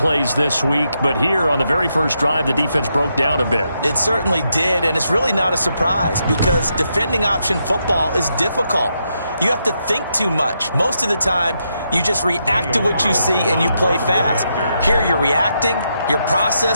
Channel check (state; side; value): inverted; both; correlation -0.81